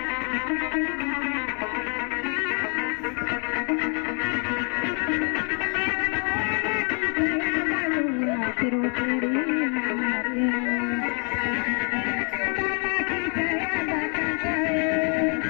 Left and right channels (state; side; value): quieter; right; 39.6 dB